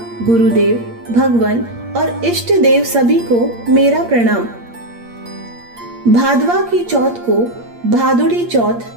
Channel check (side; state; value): left; late; 8.6 ms